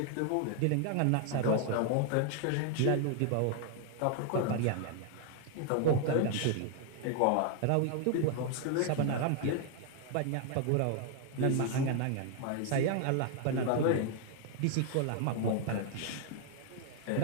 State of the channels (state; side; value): different; both; correlation 0.00